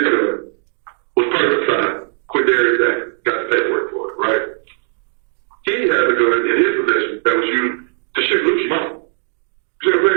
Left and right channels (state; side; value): silent; left; digital silence